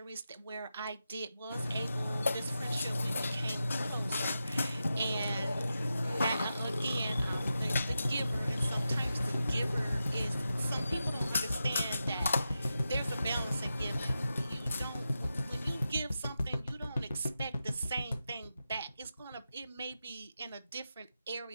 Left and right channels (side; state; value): both; inverted; correlation -0.90